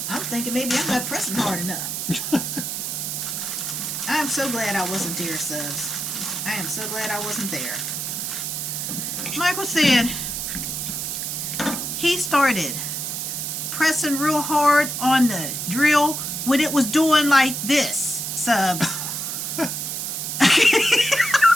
thinking maybe I'm not pressing hard enough. I'm so glad I wasn't there, Subs. I am so glad I wasn't there. Michael said he started pressing real hard on the drill when it was doing like this, Subs.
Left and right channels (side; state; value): right; noise; hiss, 3 dB below the sound